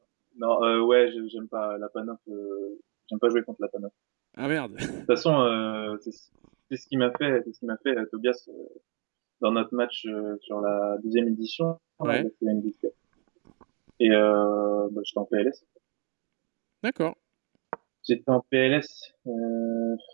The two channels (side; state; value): left; quieter; 35.8 dB